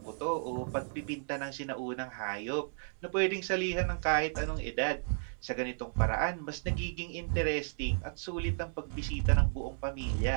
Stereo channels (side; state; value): left; silent; digital silence